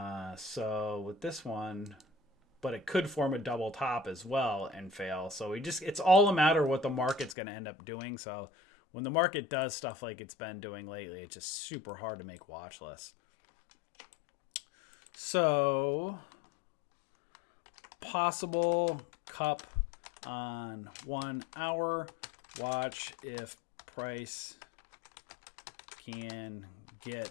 So with this one, but it could form a double top as well and fail. So it's all a matter of what the market's going to end up doing. So when the market does stuff like it's been doing lately, it's just super hard to make watch lists. So possible cup on 1 hour. Watch if price can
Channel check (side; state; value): right; drops out; at 7.4 s